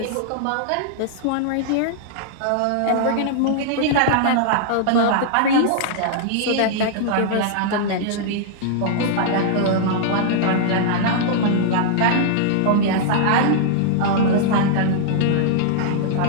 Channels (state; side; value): different; both; correlation -0.01